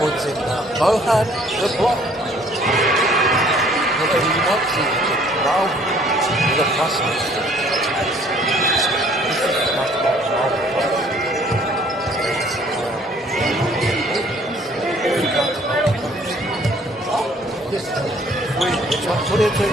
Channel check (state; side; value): normal; both; correlation 0.58